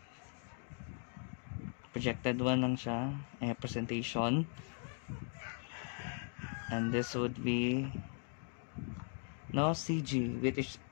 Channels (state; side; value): silent; right; 52 dB below the other